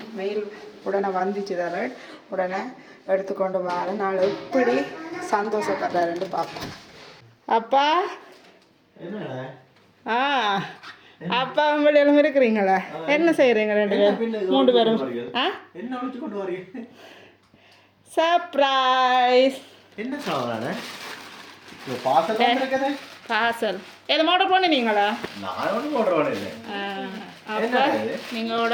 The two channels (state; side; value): identical; both; correlation 1.00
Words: மெயில் உடனே வந்துச்சு தர உடனே எடுத்துக்கொண்டு வர நாள் எப்படி சந்தோஷப்படுறாருன்னு பார்ப்போம். அப்பா அப்பா வெளியெல்லாம் இருக்கிறீங்களா? என்ன செய்கிறீங்க ரெண்டு பேரும் 3 பேரும்? சர்ப்ரைஸ். என்ன சாப்பிட்றானே பார்சல் எதுவும் ஆர்டர் பண்ணினீங்களா? நான் ஒன்றும் ஆர்டர் பண்ணல. அப்போ நீங்கள்